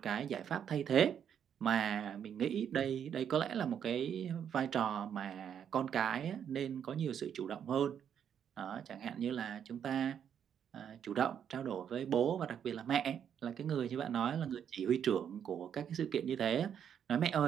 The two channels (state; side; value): quieter; left; 8.6 dB